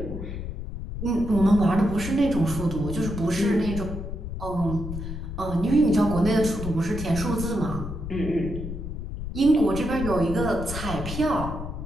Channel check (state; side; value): noise; left; rumble, 7 dB below the sound